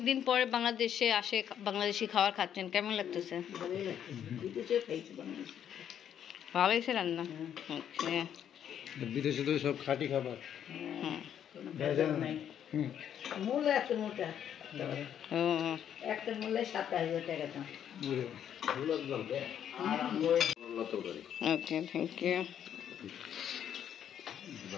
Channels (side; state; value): right; quieter; 9.4 dB